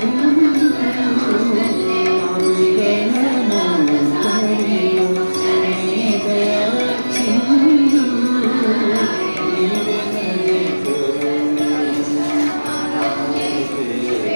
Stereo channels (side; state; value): both; inverted; correlation -1.00